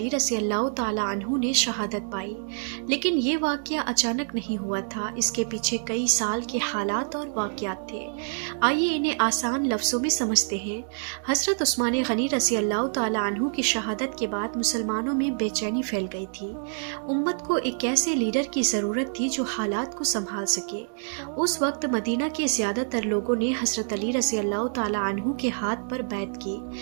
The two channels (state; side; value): silent; left; digital silence